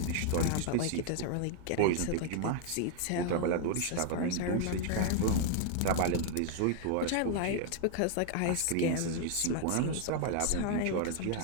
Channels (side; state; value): both; different; correlation 0.00